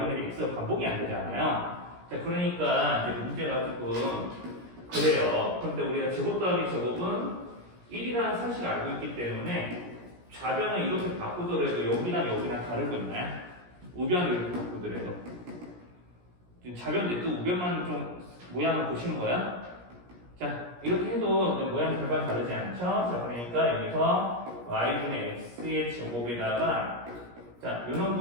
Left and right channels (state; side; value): late; left; 17 ms